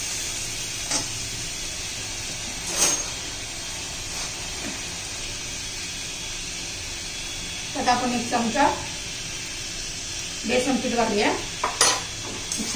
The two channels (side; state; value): both; identical; correlation 1.00